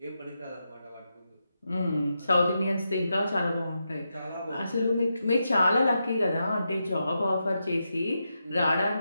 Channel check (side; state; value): both; inverted; correlation -0.86